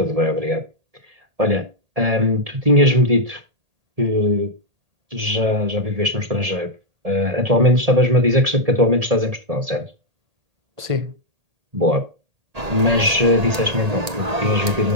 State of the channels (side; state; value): left; late; 1.9 ms